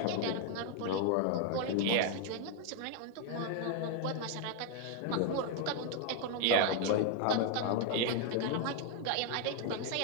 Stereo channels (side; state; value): both; different; correlation 0.00